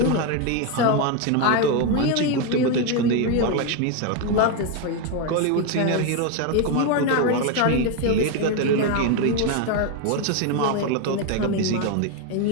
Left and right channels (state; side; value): different; both; correlation 0.02